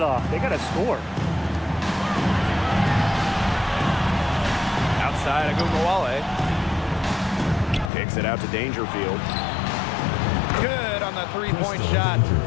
off. They got to score. Outside Agumawale. Kicks it out to Dangerfield. Good on the three-point shot.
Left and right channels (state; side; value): drops out; right; at 7.9 s